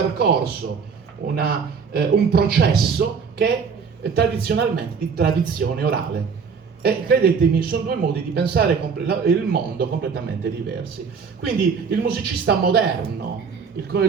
un processo che è tradizionalmente di tradizione orale. E credetemi, sono due modi di pensare il mondo completamente diversi. Quindi il musicista moderno, il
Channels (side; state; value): left; quieter; 5.9 dB